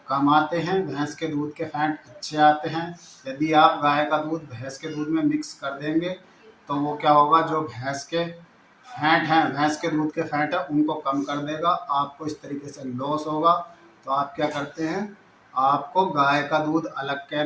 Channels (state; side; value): identical; both; correlation 1.00